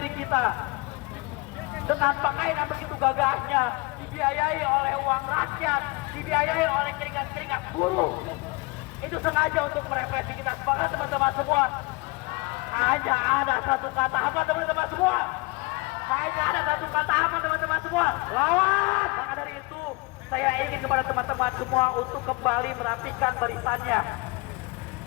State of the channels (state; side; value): quieter; right; 26.5 dB